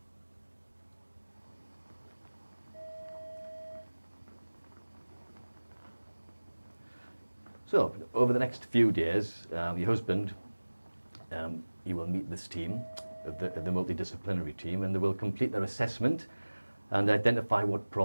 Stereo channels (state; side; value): inverted; both; correlation -1.00